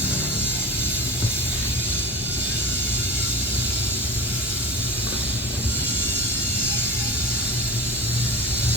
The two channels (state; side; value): normal; both; correlation 0.30